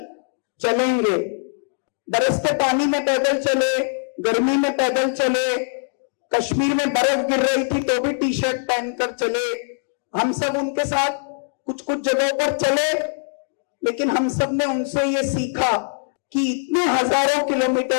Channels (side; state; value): right; silent; digital silence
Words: चलेंगे। बरसते पानी में पैदल चले, गर्मी में पैदल चले, कश्मीर में बर्फ गिर रही थी तो भी टी शर्ट पहनकर चले। हम सब उनके साथ कुछ कुछ जगहों पर चले, लेकिन हम सब ने उनसे ये सीखा कि इतने हजारों